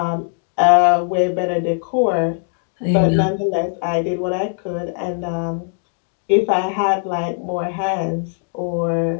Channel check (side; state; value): right; silent; 66 dB below the other